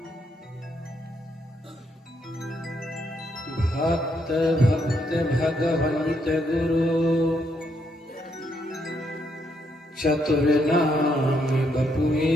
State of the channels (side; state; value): both; normal; correlation 0.75